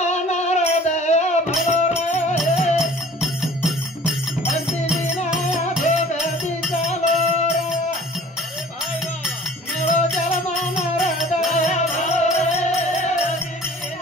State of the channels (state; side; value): normal; both; correlation 0.49